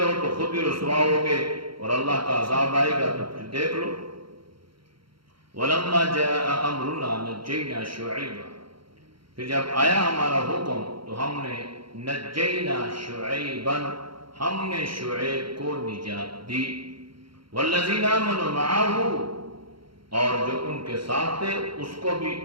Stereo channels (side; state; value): left; late; 0.73 ms